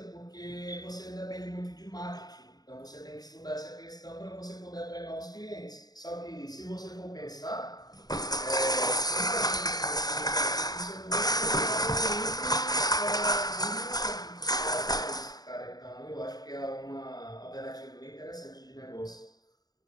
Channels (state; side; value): late; right; 0.19 ms